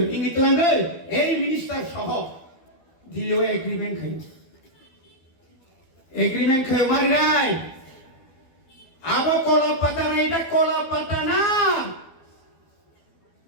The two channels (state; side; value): late; right; 12 ms